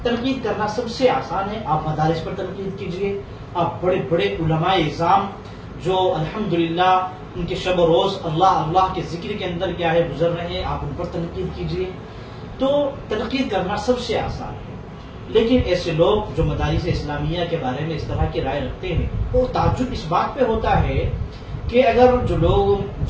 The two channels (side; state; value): both; identical; correlation 1.00